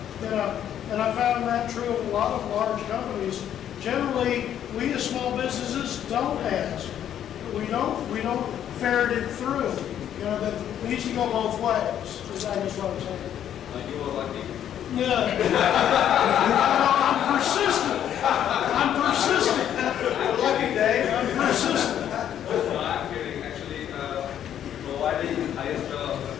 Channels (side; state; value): right; quieter; 10.2 dB